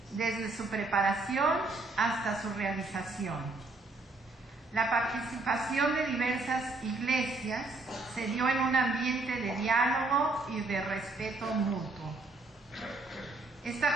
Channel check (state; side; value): quieter; left; 3.3 dB